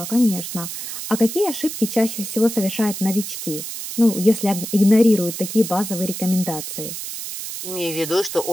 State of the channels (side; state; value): right; noise; hiss, 7 dB below the sound